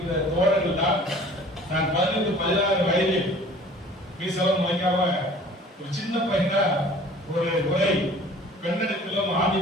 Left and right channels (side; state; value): both; normal; correlation 0.48